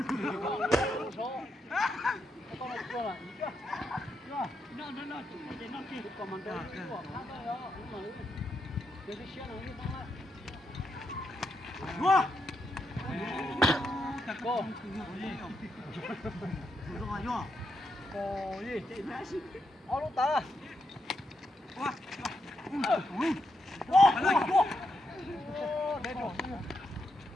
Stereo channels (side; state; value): both; normal; correlation 0.82